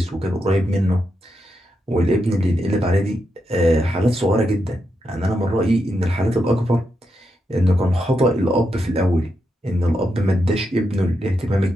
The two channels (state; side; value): normal; both; correlation 0.84